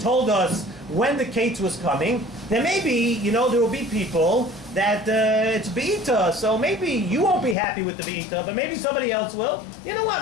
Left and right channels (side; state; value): right; drops out; at 7.6 s